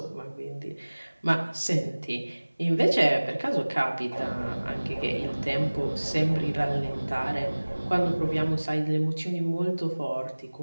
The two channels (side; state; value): both; inverted; correlation -1.00